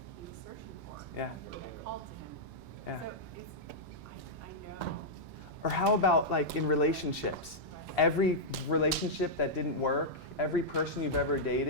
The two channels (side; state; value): both; normal; correlation -0.08